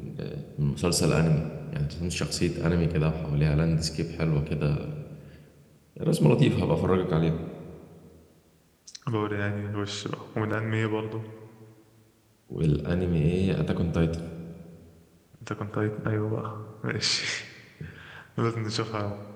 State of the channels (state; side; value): identical; both; correlation 1.00